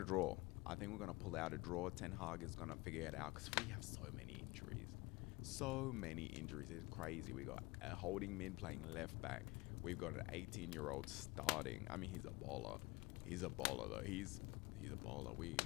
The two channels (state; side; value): quieter; right; 23.6 dB